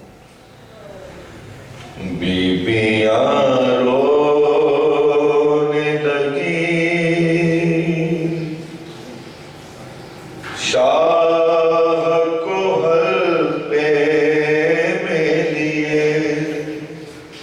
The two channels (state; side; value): identical; both; correlation 1.00